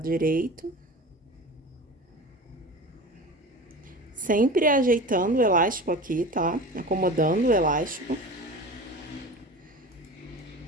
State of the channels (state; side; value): normal; both; correlation 0.34